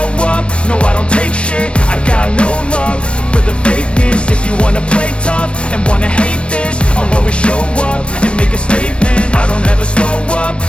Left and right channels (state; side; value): late; right; 0.059 ms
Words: up, no I don't take shit. I got no love for the fakeness. If you wanna play tough and wanna hate this, I'll always show up and make a statement. I don't ever slow up,